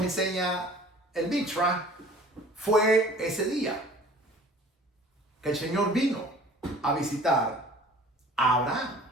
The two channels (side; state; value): both; normal; correlation 0.48